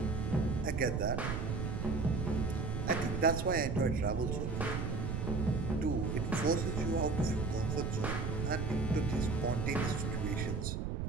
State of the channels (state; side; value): noise; right; rumble, 1 dB below the sound